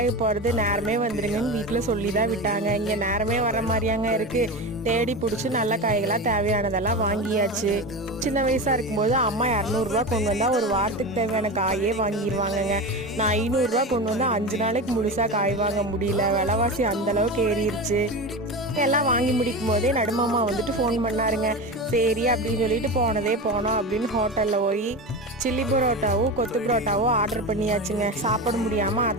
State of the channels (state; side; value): normal; both; correlation 0.24